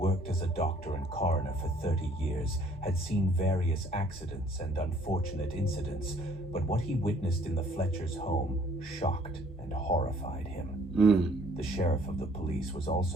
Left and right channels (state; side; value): normal; both; correlation 0.59